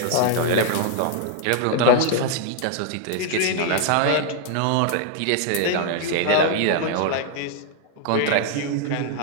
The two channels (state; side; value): different; both; correlation 0.00